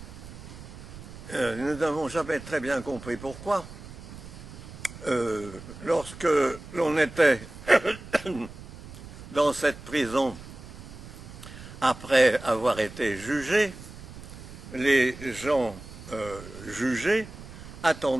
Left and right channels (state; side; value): noise; right; rumble, 15 dB below the sound